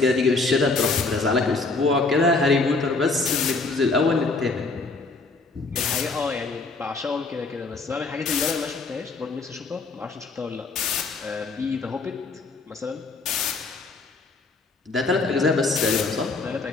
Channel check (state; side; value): quieter; right; 3.7 dB